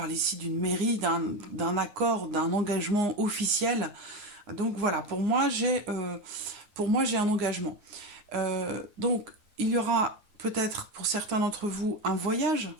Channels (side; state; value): left; late; 9.6 ms